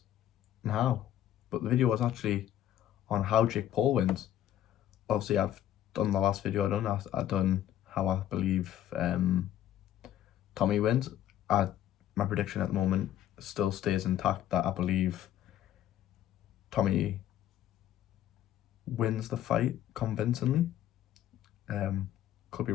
and how? But the video was actually on how Jake Paul wins. Obviously, I've done the last video I've done how I believe Tommy wins. My prediction at the moment still stays intact that I believe Tommy wins the fight convincingly. Could be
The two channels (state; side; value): quieter; right; 11.8 dB